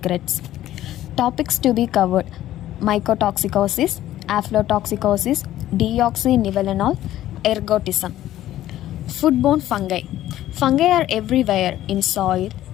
Topics to be covered: mycotoxicosis, aflatoxicosis, deoxynivalenol, ergotism. Foodborne fungi. Fungi are everywhere in soil,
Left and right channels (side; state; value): right; quieter; 13.5 dB